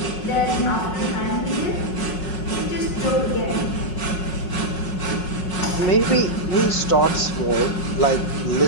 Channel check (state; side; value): late; right; 5.4 ms